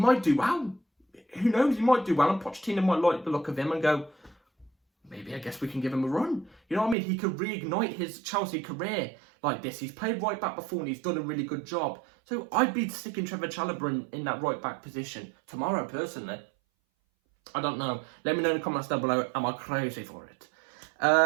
do well. Who knows? He might do well, and Pochettino might like the look of him and go, maybe I guess we can give him a run. You know what I mean? He could reignite his Chelsea career like this. He's played right back before and he's done a really good job. So I'd be sticking Trevor Chalobah in that right back position tomorrow, personally. I don't know. Let me know in the comments down below. Am I crazy for it?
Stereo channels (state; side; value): drops out; left; at 7.0 s